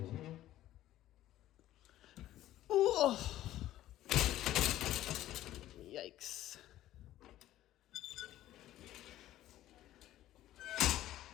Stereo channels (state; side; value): quieter; right; 13.9 dB